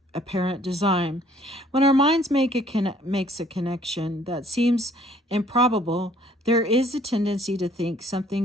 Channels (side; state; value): both; normal; correlation 0.60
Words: apparent design. When our minds makes a connection that seems improbable, there is a tendency to think